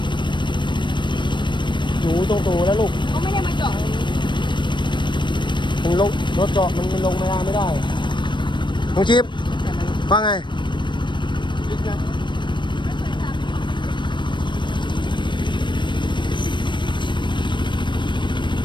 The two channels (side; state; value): right; late; 0.22 ms